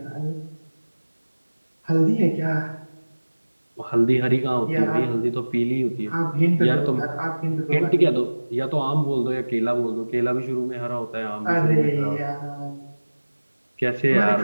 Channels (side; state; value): both; inverted; correlation -1.00